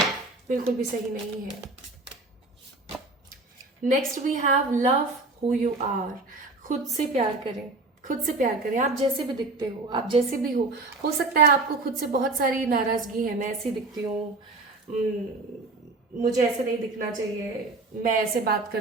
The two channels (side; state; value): left; quieter; 3.2 dB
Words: बिल्कुल भी सही नहीं है। Next we have love who you are. खुद से प्यार करें, खुद से प्यार करें। आप जैसे भी दिखते हो, आप जैसे भी हो सकता है आपको खुद से बहुत सारी नाराजगी है। मैं ऐसी दिखती हूँ, मुझे ऐसे नहीं दिखना चाहिए, मैं ऐसे बात